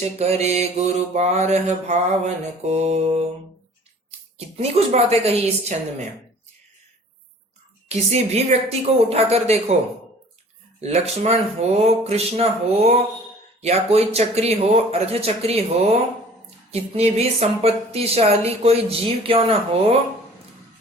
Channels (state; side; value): normal; both; correlation 0.49